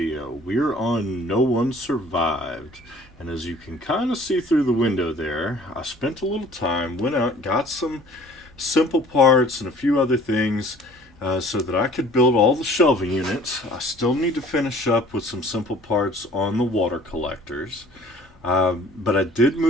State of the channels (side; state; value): both; normal; correlation 0.51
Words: We're on No One Survived, and as you can kind of see through the window there, I spent a little time, went out, got some simple parts and a few other things so that I could build all the shelving units. I still need to finish up with some simple parts on the water collectors. But I did